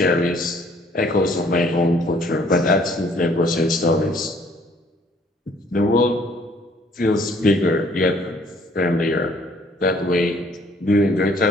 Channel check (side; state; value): both; normal; correlation 0.61